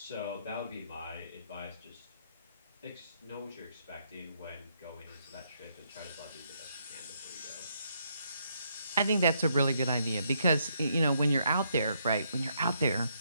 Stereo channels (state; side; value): inverted; both; correlation -0.74